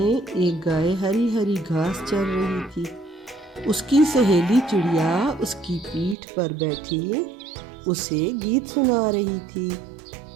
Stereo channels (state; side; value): drops out; left; at 6.2 s